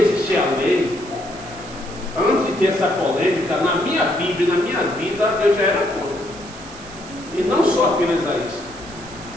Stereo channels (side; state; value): right; noise; hiss, 17 dB below the sound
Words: a lei, antes de ter essa polêmica, na minha Bíblia, na minha vida, eu já era contra. E não só apenas a isso,